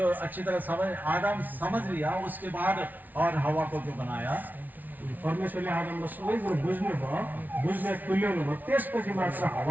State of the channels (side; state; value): left; late; 0.081 ms